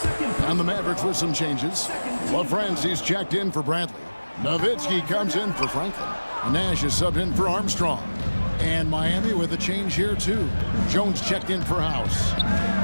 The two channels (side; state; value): both; inverted; correlation -1.00